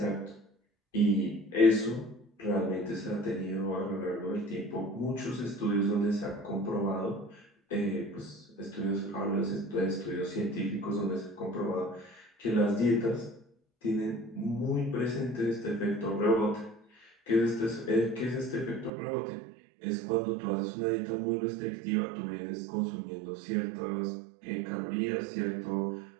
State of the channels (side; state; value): left; drops out; at 18.9 s